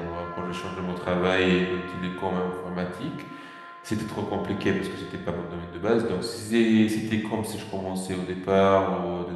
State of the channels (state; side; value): identical; both; correlation 1.00